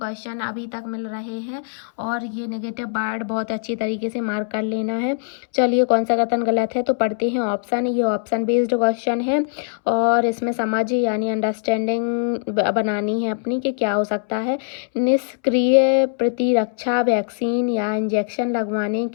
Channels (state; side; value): silent; right; 65 dB below the other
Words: अभी तक मिल रहे हैं, और ये नेगेटिव वर्ड बहुत अच्छी तरीके से मार्क कर लेना है। चलिए कौन सा कथन गलत है, तो पढ़ते हैं ऑप्शन। ये ऑप्शन बेस्ड क्वेश्चन है, और इसमें समझ यानी अंडरस्टैंडिंग बनानी है अपनी कि क्या हो सकता है। निष्क्रिय प्रतिरक्षा वैक्सीन या इंजेक्शन लगवाने